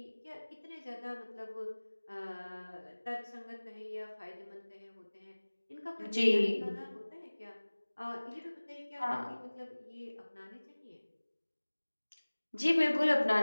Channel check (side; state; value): both; inverted; correlation -1.00